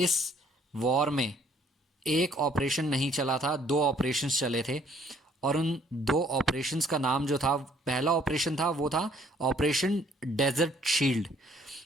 वॉर में एक ऑपरेशन नहीं चला था, 2 ऑपरेशंस चले थे। और उन 2 ऑपरेशंस का नाम जो था, पहला ऑपरेशन था वो था ऑपरेशन डेजर्ट शील्ड।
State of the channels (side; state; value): both; normal; correlation 0.62